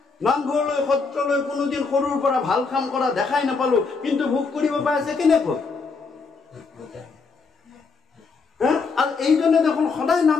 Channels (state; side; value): quieter; right; 4.6 dB